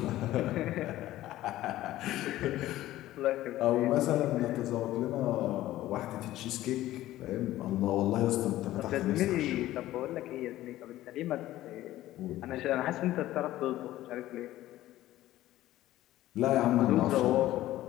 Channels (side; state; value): right; quieter; 15.0 dB